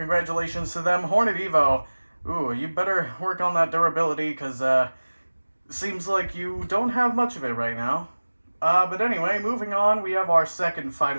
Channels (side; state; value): both; inverted; correlation -1.00